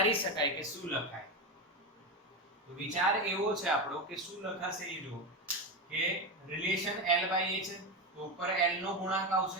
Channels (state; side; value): normal; both; correlation 0.15